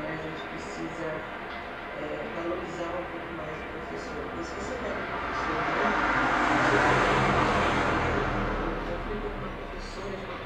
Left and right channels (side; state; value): both; identical; correlation 1.00